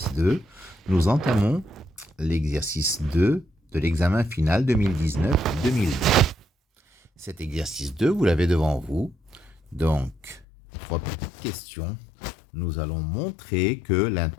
nous entamons l'exercice 2 de l'examen final 2019-2020. Cet exercice 2, vous l'avez devant vous. Donc, trois petites questions. Nous allons montrer que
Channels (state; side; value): drops out; right; at 10.5 s